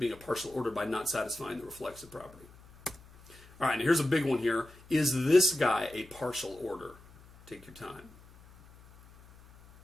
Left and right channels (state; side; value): noise; left; hum, 23 dB below the sound